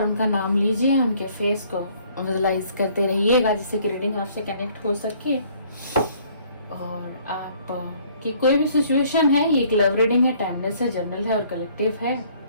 उनका नाम लीजिए, उनके फेस को विजुलाइज करते रहिएगा जिससे कि रीडिंग आपसे कनेक्ट हो सके। और आप की कोई भी सिचुएशन है, ये एक लव रीडिंग है, टाइमलेस है, जनरल है और कलेक्टिव है।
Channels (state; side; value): inverted; both; correlation -0.60